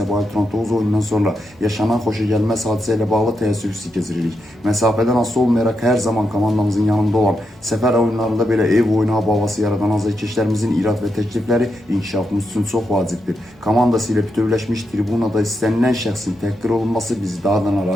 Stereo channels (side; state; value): both; normal; correlation 0.84